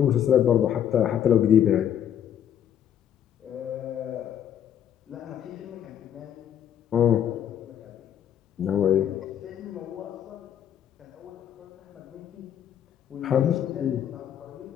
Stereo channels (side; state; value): right; quieter; 9.6 dB